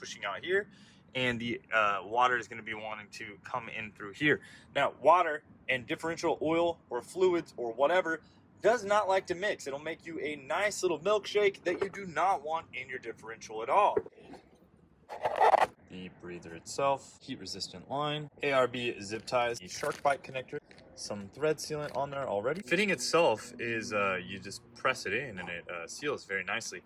here, and the water is going to be wanting to come in through here. Now, water and differential oil or fluids or whatever does not like to mix. It'll make you a nice little milkshake that you do not want in your differential at all. The breather itself, heat resistant line, ARB zip ties, the shark bite connector, some thread sealant on there already. Fitting itself is you just press it in and it seals very nicely.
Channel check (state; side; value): identical; both; correlation 1.00